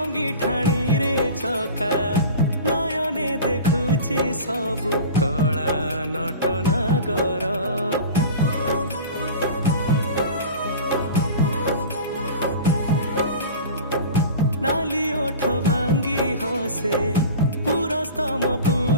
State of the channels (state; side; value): inverted; both; correlation -0.36